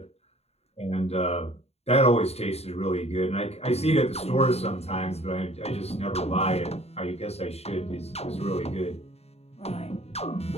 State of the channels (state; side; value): late; right; 0.30 ms